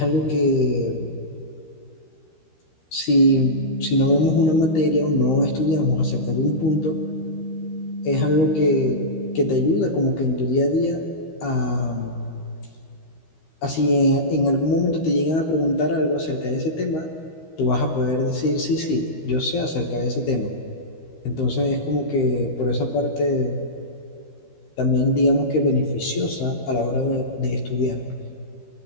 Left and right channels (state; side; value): late; right; 13 ms